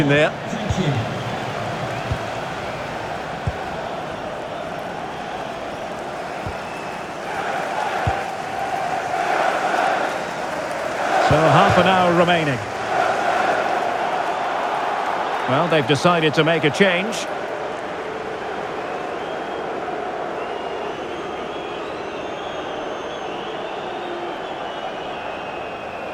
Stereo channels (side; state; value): both; identical; correlation 1.00